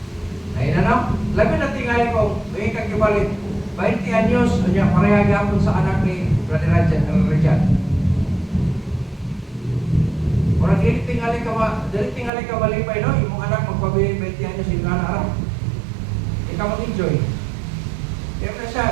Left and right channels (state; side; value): drops out; left; at 12.3 s